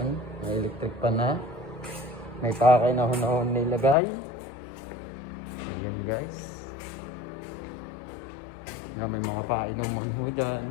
may electric pan na. May pakay na ho nilagay. So yun guys. Yan, may mga painuman ho dyan.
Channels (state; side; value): drops out; right; at 4.0 s